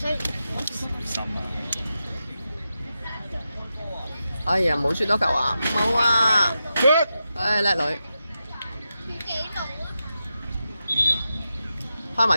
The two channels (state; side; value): inverted; both; correlation -0.89